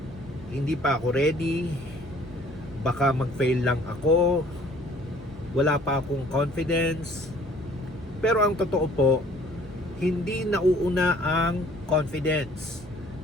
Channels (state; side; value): noise; right; hum, 18 dB below the sound